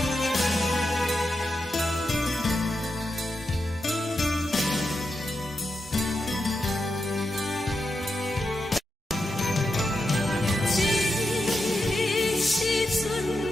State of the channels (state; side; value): normal; both; correlation 0.87